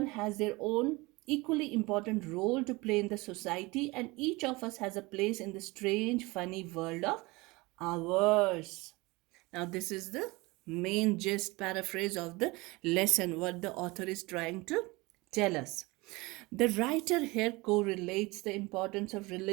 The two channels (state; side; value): quieter; left; 23.4 dB